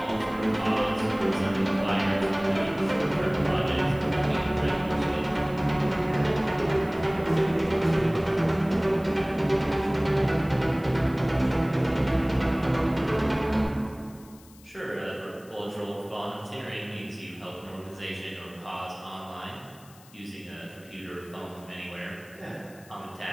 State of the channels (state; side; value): noise; left; hiss, 25 dB below the sound